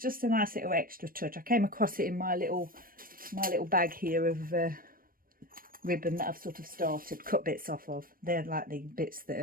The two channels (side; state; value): left; late; 0.41 ms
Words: a nice little extra touch. I came across it in my little bag here of ribbon that I've sort of cut bits off of. They're like the bits that